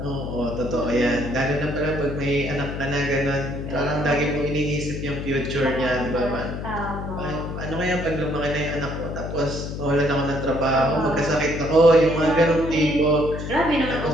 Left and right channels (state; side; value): noise; left; hum, 6 dB below the sound